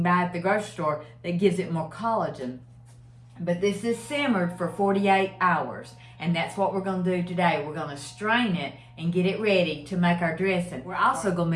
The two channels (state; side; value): identical; both; correlation 1.00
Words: buy at the grocery store that gives it more collagen. But this is simmered for 48 hours. And that's what we're going to do today. We're going to strain it and get it ready to make our dressing. We're also going